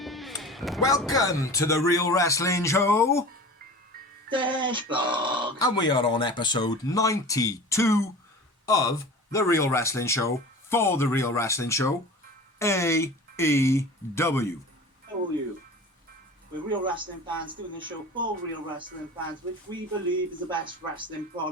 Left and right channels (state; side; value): normal; both; correlation 0.37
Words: Welcome to the Real Wrestling Show. Dashboard. And we are on episode 92 of the Real Wrestling Show for the Real Wrestling Show, AEW. How are you? We're real wrestling fans doing this show for real wrestling fans, which we believe is the best wrestling